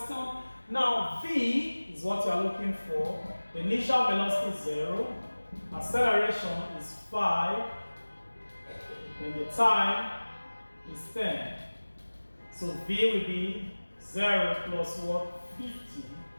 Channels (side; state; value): both; inverted; correlation -1.00